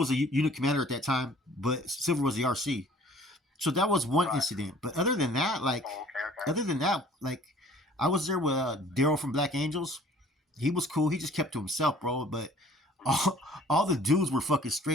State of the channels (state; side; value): normal; both; correlation 0.53